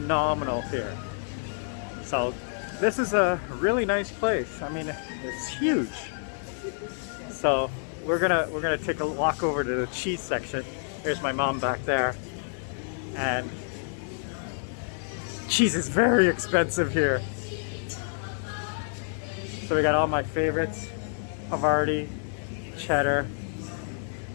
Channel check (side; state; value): right; silent; 59 dB below the other